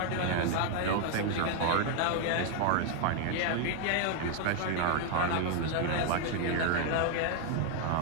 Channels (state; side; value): different; both; correlation 0.00